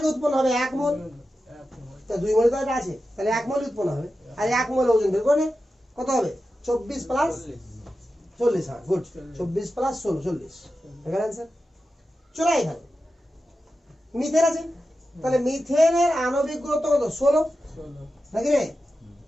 উৎপন্ন হবে 1 মোল, তা 2 মোল তো এটা আছে, তাহলে 1 মোল উৎপন্ন হবে। আর 1 মোল ওজন বের করে নে, কত হবে, 24 প্লাস 40। হ্যাঁ গুড, 24 প্লাস 16 40 এখানে অ্যান্সার। চলে এখানে মিথেন আছে, তাহলে মিথেনের আণবিক গুরুত্ব কত, 16 নাকি রে?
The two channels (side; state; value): both; normal; correlation 0.91